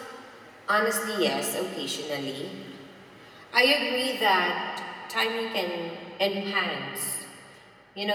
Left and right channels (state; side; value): identical; both; correlation 1.00